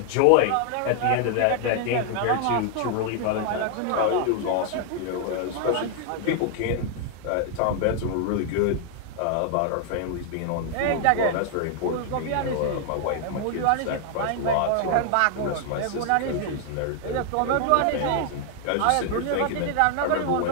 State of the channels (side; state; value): both; different; correlation 0.00